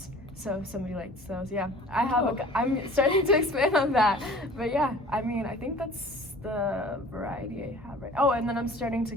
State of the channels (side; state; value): both; normal; correlation 0.46